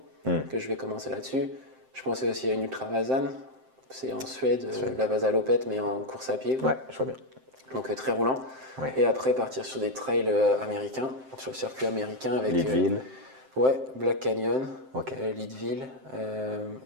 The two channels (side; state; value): left; late; 7.7 ms